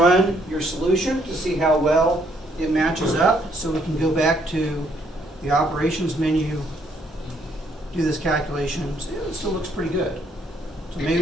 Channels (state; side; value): normal; both; correlation 0.69